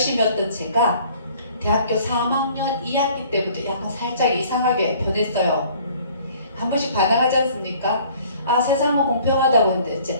했던 제가 대학교 3학년 2학기 때부터 약간 살짝 이상하게 변했어요. 한 번씩 반항하지 않습니까? 아, 세상은 공평하다고 했는데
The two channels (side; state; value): both; inverted; correlation -0.54